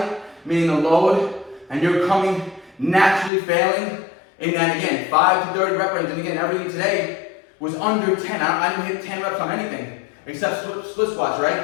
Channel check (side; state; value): right; drops out; at 3.3 s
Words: meaning the load, and you're coming naturally failing in that, again, 5 to 30 rep range. And again, everything today was under 10. I didn't hit 10 reps on anything. except split squats,